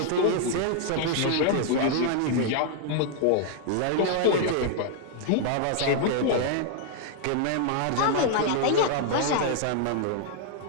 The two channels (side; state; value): both; different; correlation 0.00